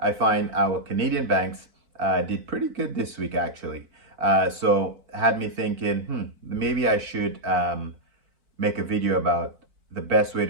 find our Canadian banks did pretty good this week actually. So had me thinking, maybe I should make a video about the best way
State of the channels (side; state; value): left; late; 4.5 ms